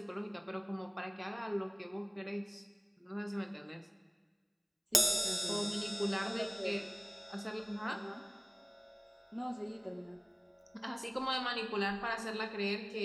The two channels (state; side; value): identical; both; correlation 1.00